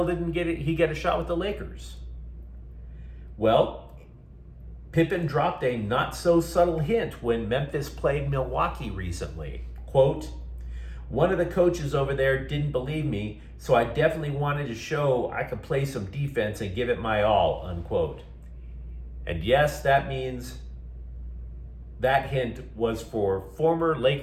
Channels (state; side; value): identical; both; correlation 1.00